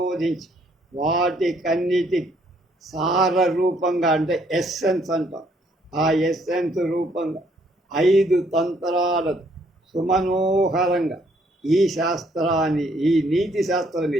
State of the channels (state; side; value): normal; both; correlation 0.67